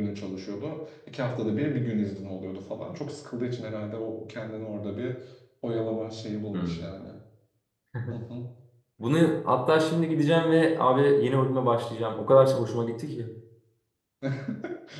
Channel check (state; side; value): identical; both; correlation 1.00